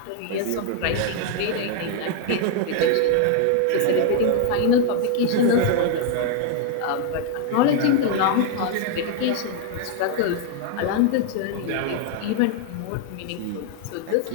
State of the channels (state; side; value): different; both; correlation 0.00